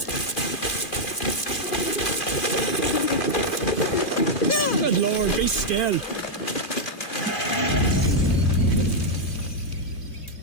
Good Lord, be still.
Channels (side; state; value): right; late; 2.4 ms